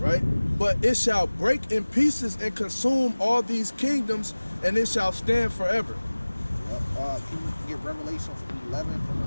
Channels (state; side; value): inverted; both; correlation -1.00